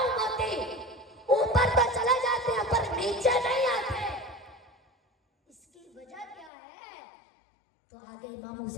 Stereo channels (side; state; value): right; drops out; at 6.5 s